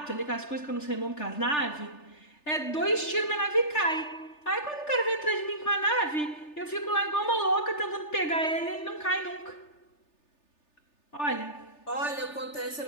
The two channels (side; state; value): right; late; 3.4 ms